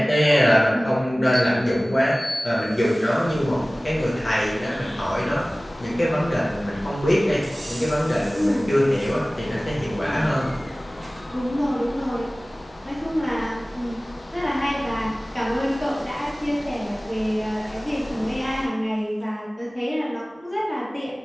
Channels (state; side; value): normal; both; correlation 0.98